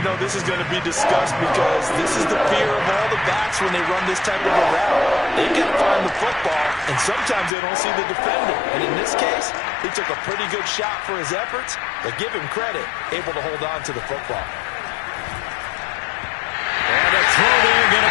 know this is going to be discussed because this is the fear of all the backs when they run this type of a route. They've got to find the football, and sometimes they don't see the defender. And in this case, he took a pretty good shot for his efforts, but give him credit, able to hold on to the football. And a throw there going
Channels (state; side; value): drops out; right; at 7.5 s